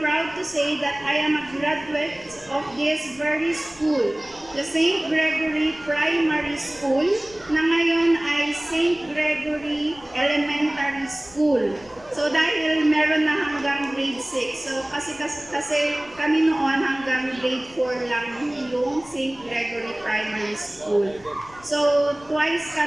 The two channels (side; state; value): left; noise; rumble, 24 dB below the sound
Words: to say that I am a graduate of this very school, the St. Gregory Primary School, na ngayon ay St. Gregory Elementary School. So dahil meron na hanggang grade 6, so kasi kami noon hanggang grade 4 lang yung St. Gregory Primary School. So twice